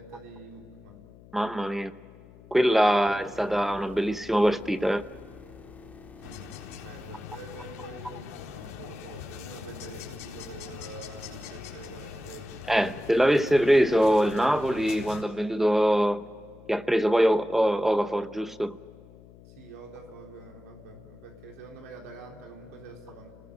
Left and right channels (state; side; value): noise; left; hum, 22 dB below the sound